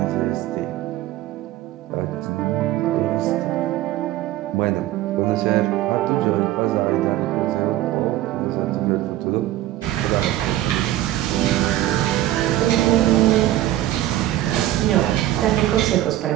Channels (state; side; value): quieter; left; 14.4 dB